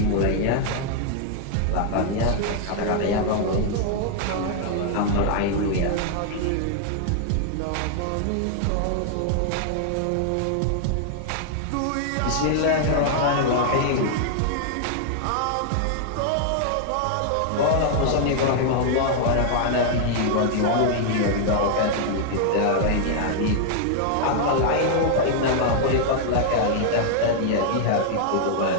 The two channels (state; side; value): different; both; correlation 0.00